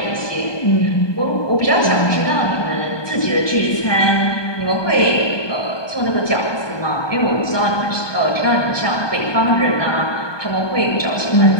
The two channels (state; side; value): late; right; 1.2 ms